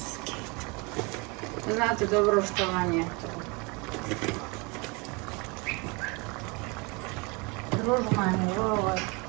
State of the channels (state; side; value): quieter; left; 28.7 dB